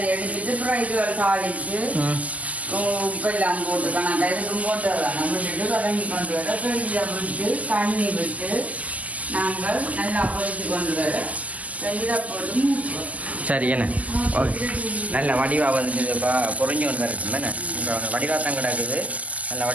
எடுத்துட்டு அப்புறம் இது தாளிச்சு உப்பெல்லாம் போட்டு கணக்கா இதுக்கும் போட்டு வரலாம் விட்டுட்டு வதங்கி கொண்டு வர ஃப்ரிட்ஜில் விட்டு தண்ணி விட்டு நாங்கள் நல்லா பொரிச்சு கொண்டு வர இதை போட்டு மூக்குவோம். சரி என்ன ஓகே நல்ல வடிவாக வந்துட்டு இப்போ பொறிஞ்சு கொண்டு வரட்டும் தானே இப்போ வடிவாக தான் கிடக்குது நல்ல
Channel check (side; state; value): left; late; 0.074 ms